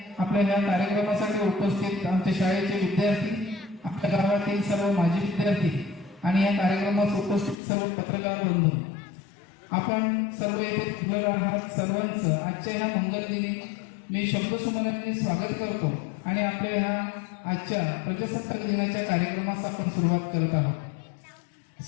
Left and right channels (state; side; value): drops out; right; at 7.6 s